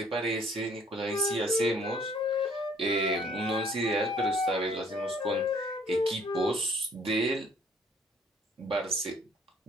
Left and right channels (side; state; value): both; normal; correlation 0.59